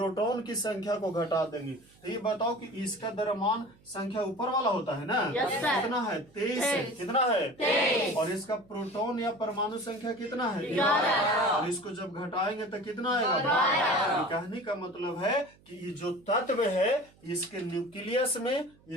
की संख्या को घटा देंगे। तो ये बताओ कि इसका द्रव्यमान संख्या ऊपर वाला होता है ना? Yes, sir. कितना है? 23 है। कितना है? 23। और इसका प्रोटॉन या परमाणु संख्या कितना है? 11। और इसको जब घटाएंगे तो कितना आएगा? 12। कहने का मतलब है कि ये जो तत्व है इसके न्यूक्लियस में,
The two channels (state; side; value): noise; right; hum, 29 dB below the sound